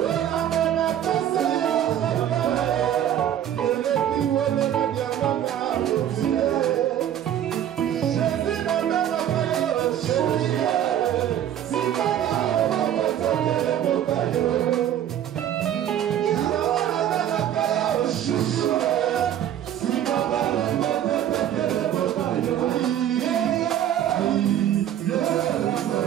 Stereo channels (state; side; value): quieter; left; 10.8 dB